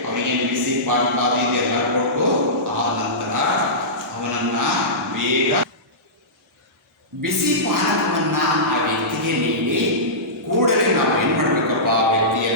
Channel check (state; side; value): normal; both; correlation -0.19